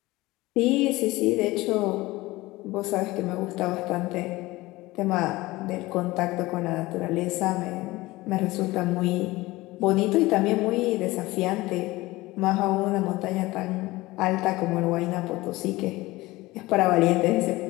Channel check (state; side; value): quieter; right; 19.8 dB